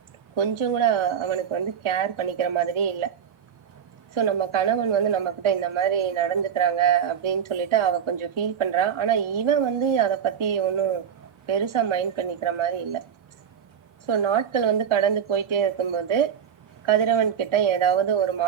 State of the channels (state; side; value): quieter; left; 8.0 dB